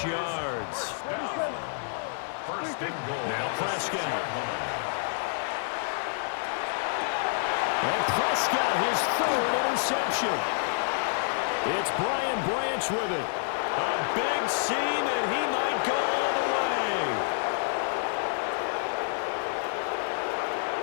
yards. First and goal. Now Prescott. And Prescott, his 3rd interception. It's Brian Branch with it. A big seam, and he might go all the way.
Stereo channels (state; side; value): silent; right; digital silence